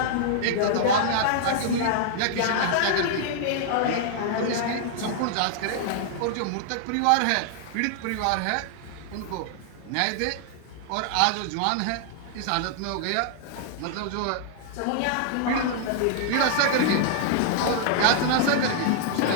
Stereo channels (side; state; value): both; different; correlation -0.01